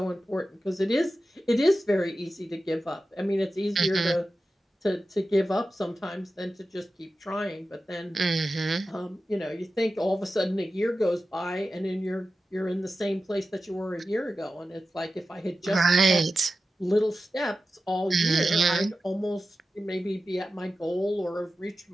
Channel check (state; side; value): normal; both; correlation 0.93